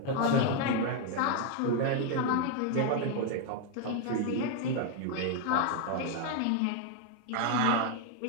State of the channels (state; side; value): different; both; correlation 0.01